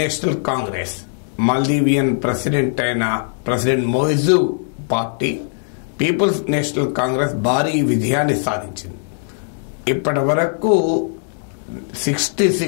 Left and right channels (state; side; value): silent; right; digital silence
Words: Congress Maldivian President అయిన President Muizzu party People's National Congress భారీ విజయాన్ని సాధించింది. ఇప్పటి వరకు